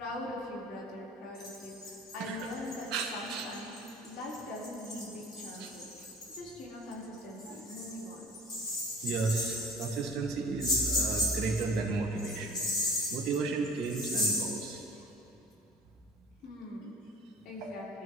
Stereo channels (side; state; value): both; normal; correlation 0.45